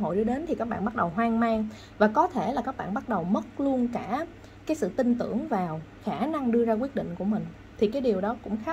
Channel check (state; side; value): identical; both; correlation 1.00